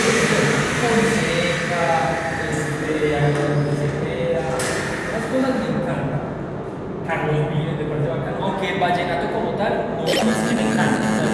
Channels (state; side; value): identical; both; correlation 1.00